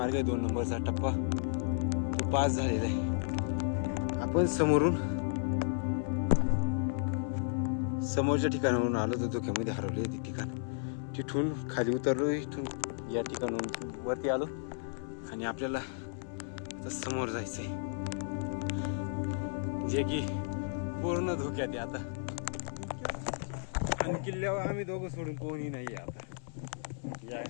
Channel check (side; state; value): right; silent; 55 dB below the other